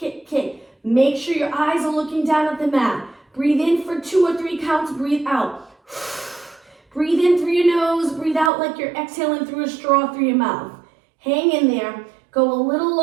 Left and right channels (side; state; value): left; drops out; at 8.5 s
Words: kick. Make sure your eyes are looking down at the mat. Breathe in for 2 or 3 counts. Breathe out. Breathe in through your nose. Breathe out like you're exhaling through a straw through your mouth. Hang in there. Go a little